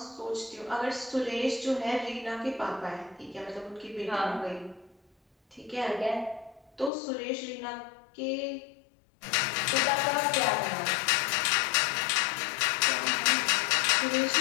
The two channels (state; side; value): drops out; right; at 6.9 s